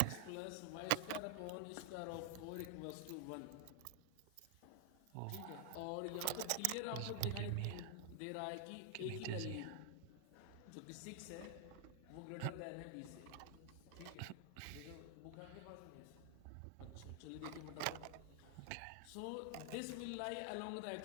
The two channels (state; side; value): different; both; correlation 0.00